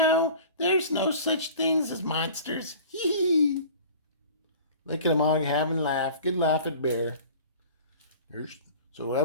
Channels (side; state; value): both; inverted; correlation -0.43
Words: there's no such things as monsters? Hee hee. Look at them all having a laugh. Good laugh at Bear. So that